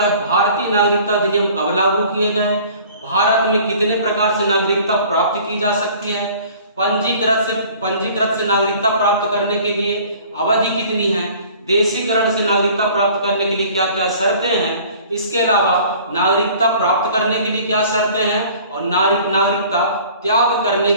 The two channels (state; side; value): inverted; both; correlation -0.49